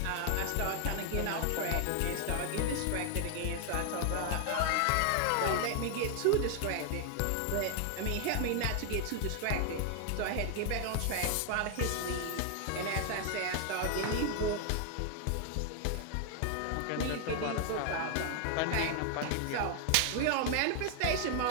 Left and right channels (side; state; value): both; different; correlation 0.00